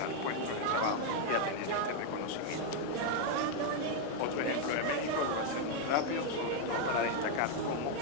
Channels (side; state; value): both; different; correlation 0.00